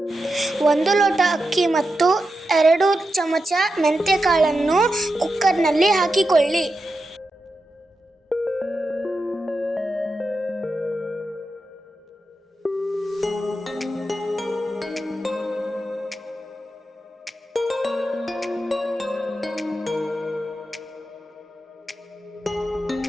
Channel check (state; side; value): normal; both; correlation 0.89